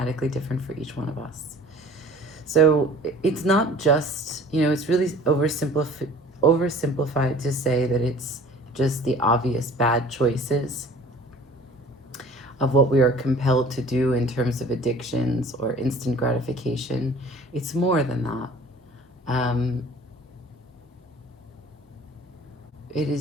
different for each one of us. So it's not just, it's really oversimplified to say that it's just the obvious bad choices of what we are compelled to do in terms of addictions or instant gratification. It's more than that. It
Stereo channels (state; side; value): normal; both; correlation 0.48